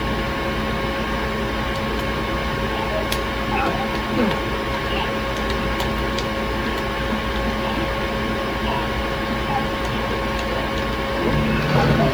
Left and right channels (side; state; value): left; noise; hiss, 23 dB below the sound